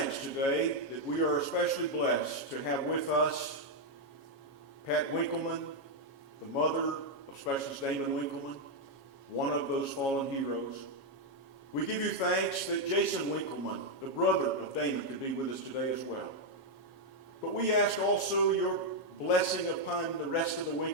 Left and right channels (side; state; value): right; late; 7.3 ms